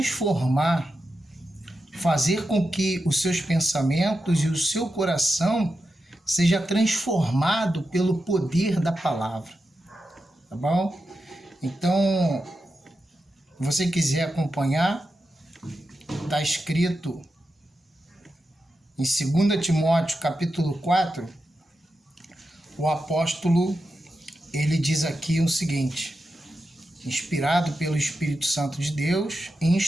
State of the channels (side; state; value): both; normal; correlation 0.89